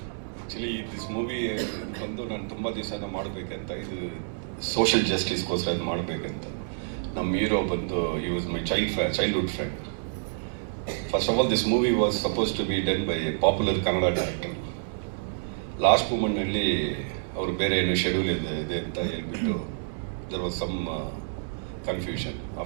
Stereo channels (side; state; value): left; silent; digital silence